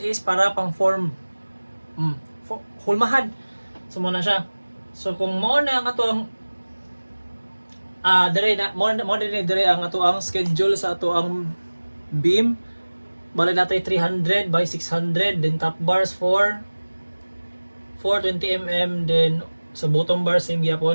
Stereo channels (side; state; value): both; inverted; correlation -1.00